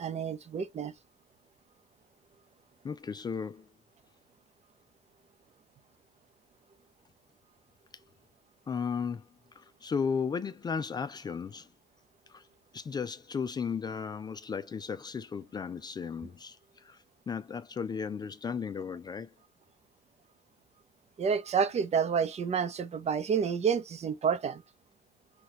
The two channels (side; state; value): both; normal; correlation 0.38